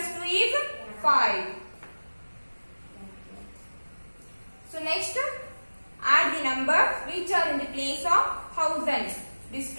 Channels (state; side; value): inverted; both; correlation -1.00